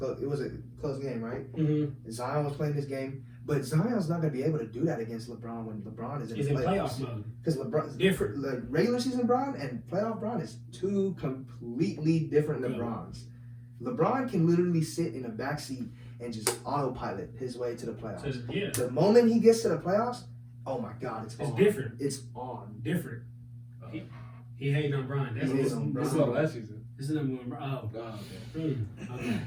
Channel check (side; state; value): both; identical; correlation 1.00